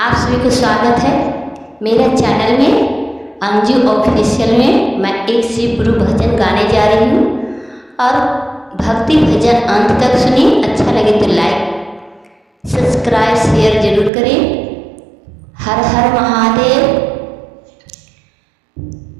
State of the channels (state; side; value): drops out; left; at 14.1 s